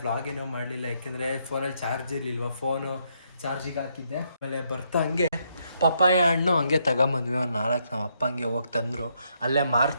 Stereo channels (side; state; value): both; inverted; correlation -0.75